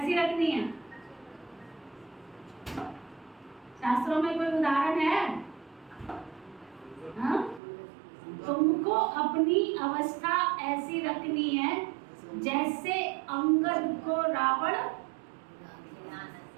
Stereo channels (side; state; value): left; drops out; at 7.6 s